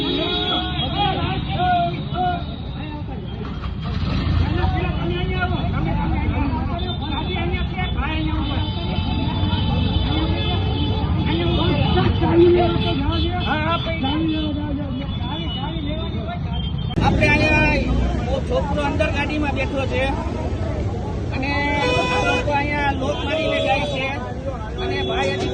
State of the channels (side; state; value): both; identical; correlation 1.00